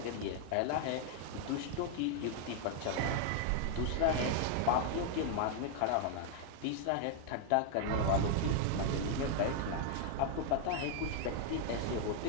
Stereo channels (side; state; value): both; different; correlation 0.00